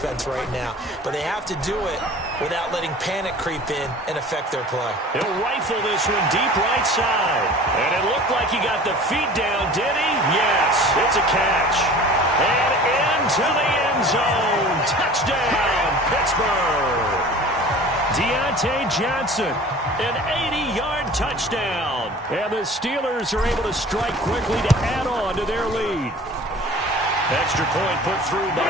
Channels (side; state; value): both; normal; correlation 0.43